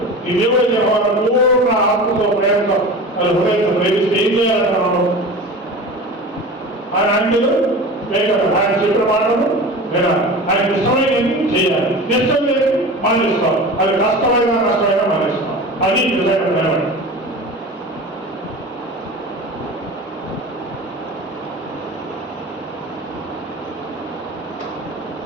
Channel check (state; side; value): normal; both; correlation 0.33